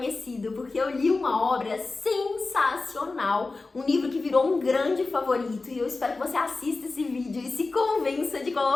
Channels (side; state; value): right; quieter; 3.6 dB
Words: porque eu li uma obra sensacional, um livro que virou um grande favorito, e eu espero que você assista esse vídeo e se convença de